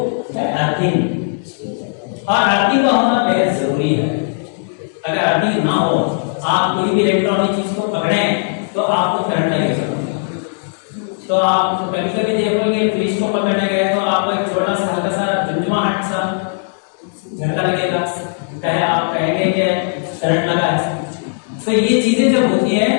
है अर्थिंग। और अर्थिंग का होना बेहद जरूरी है। अगर अर्थिंग ना हो, आप कोई भी इलेक्ट्रॉनिक चीज को पकड़ें तो आपको करंट लगेगा। तो आप कभी कभी देखोगे फ्रिज को पकड़ने गए तो आपको एक छोटा सा हल्का सा झुंझुमाहट सा झटका लगेगा, कहे आप कहेंगे कि करंट लगा है। तो ये चीजें जब होती है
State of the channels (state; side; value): silent; right; digital silence